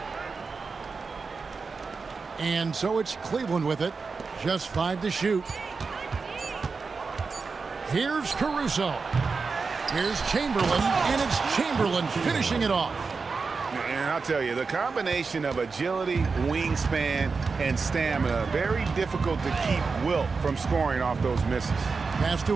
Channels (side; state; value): left; quieter; 4.7 dB